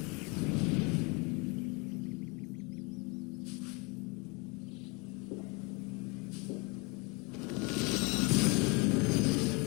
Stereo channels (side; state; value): right; quieter; 29.7 dB